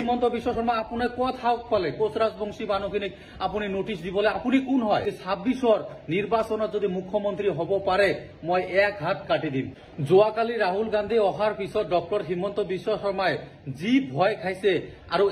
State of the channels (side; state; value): both; identical; correlation 1.00